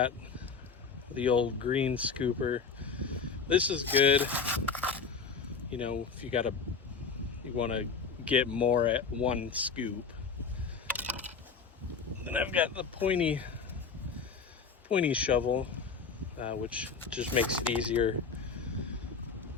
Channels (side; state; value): right; quieter; 5.4 dB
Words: the old green scooper. This is good, you know, if you want to get more at one scoop. Then I've got the pointy shovel, which just makes it easier